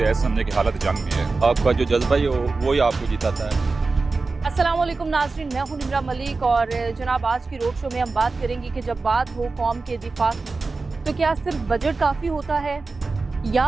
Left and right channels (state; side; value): quieter; left; 3.9 dB